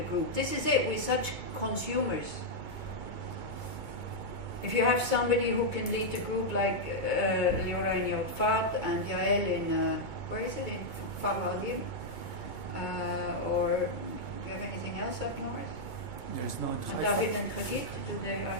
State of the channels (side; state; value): right; late; 2.2 ms